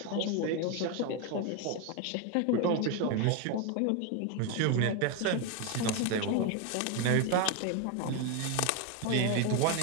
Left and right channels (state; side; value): different; both; correlation 0.02